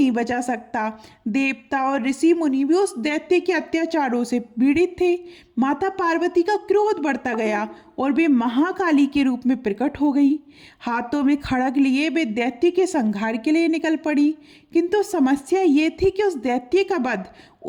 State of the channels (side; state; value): both; identical; correlation 1.00